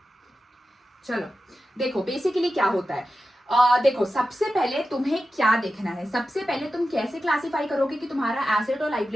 चलो देखो बेसिकली क्या होता है। देखो सबसे पहले तुम्हें क्या देखना है, सबसे पहले तुम कैसे क्लासिफाई करोगे कि तुम्हारा एसेट और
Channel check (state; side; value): normal; both; correlation 0.92